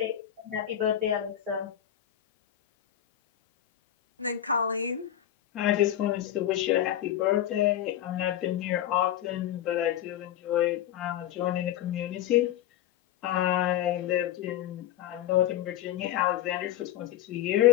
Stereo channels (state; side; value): quieter; right; 11.6 dB